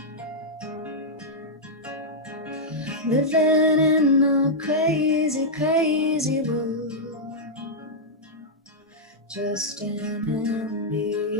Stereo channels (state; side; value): normal; both; correlation -0.07